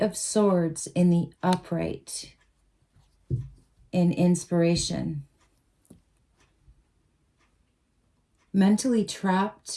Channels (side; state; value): both; identical; correlation 1.00